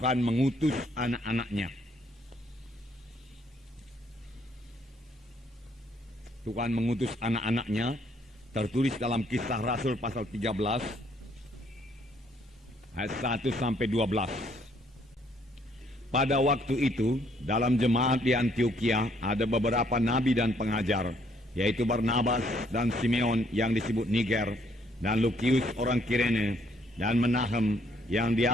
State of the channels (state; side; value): normal; both; correlation 0.67